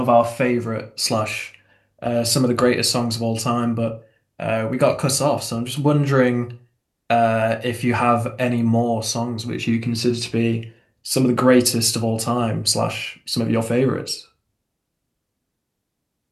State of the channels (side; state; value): both; identical; correlation 1.00